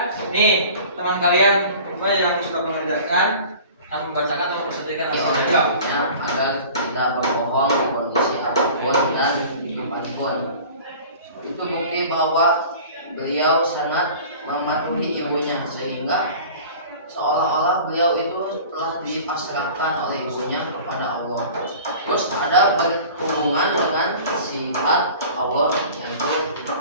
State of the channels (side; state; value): both; inverted; correlation -0.42